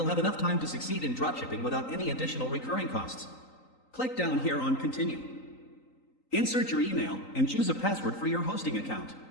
have enough time to succeed in dropshipping without any additional recurring costs. Click down here on Continue. Insert your email and choose a password for your hosting account.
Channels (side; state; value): right; late; 3.9 ms